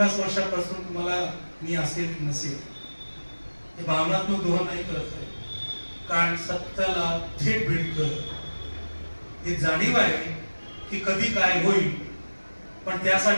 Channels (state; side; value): inverted; both; correlation -1.00